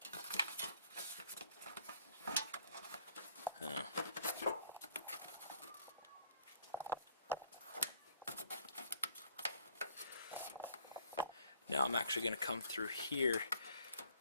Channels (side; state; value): both; inverted; correlation -0.60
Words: Now I'm actually going to come through here,